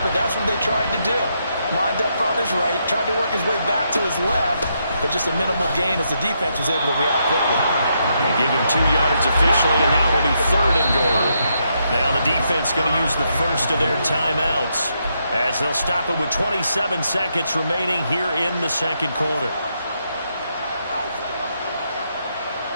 that's what they tried to do. Lined up on his right, tried to work his way back to his left, but just a minimal gain as the defense was able to react quickly. They give him 2 yards officially, and now will be 3rd and goal. Now the defense going to use the first of their timeouts as they'll stop it with 27 seconds remaining here in the second quarter.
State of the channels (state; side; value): inverted; both; correlation -0.79